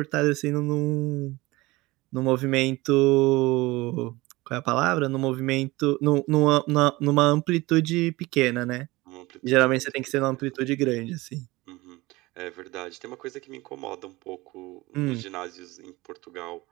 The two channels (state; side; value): quieter; left; 20.9 dB